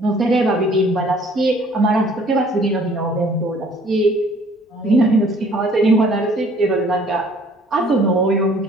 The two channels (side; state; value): both; normal; correlation 0.57